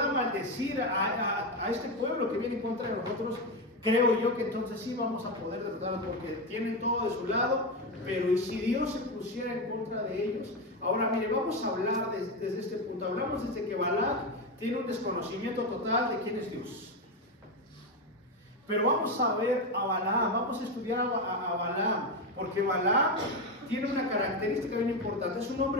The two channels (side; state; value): both; normal; correlation 0.13